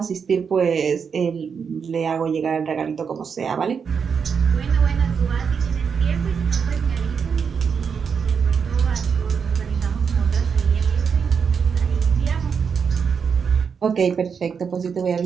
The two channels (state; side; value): quieter; left; 6.3 dB